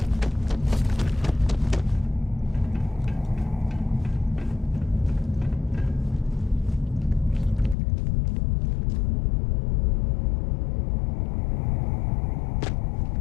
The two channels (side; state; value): right; drops out; at 7.8 s